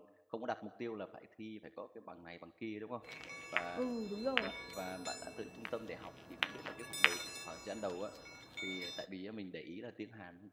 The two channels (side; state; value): both; identical; correlation 1.00